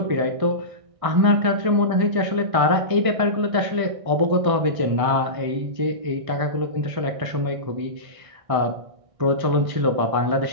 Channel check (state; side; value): late; left; 1.6 ms